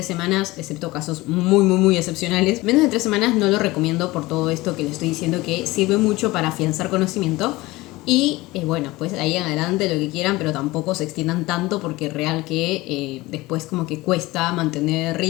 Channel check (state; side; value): quieter; right; 20.1 dB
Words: semanas, excepto casos muy excepcionales. Menos de 3 semanas no lo recomiendo por todo esto que les estoy diciendo, que sirve mucho para afianzar conocimiento. Y bueno, pues ahí en adelante lo que quieran, pero tampoco se extiendan tanto porque es real que después como que cuesta mantener